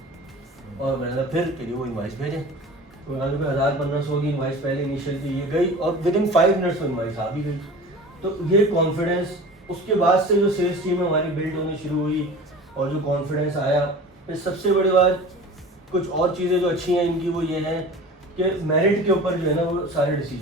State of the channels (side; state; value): both; normal; correlation 0.38